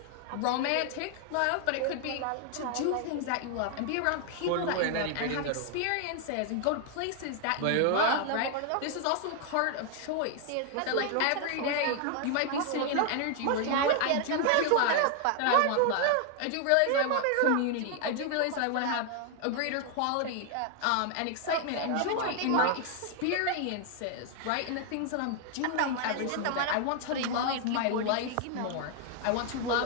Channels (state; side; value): different; both; correlation 0.00